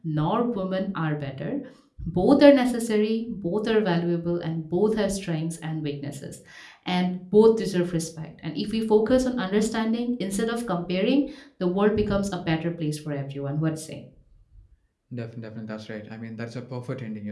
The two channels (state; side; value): identical; both; correlation 1.00